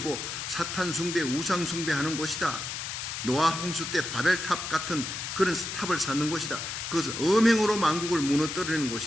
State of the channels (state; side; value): noise; left; hiss, 5 dB below the sound